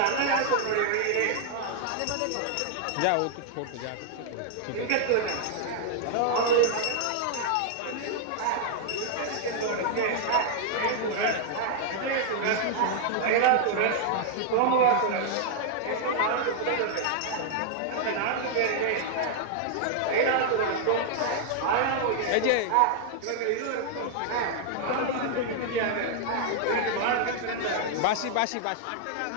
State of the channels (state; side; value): different; both; correlation 0.00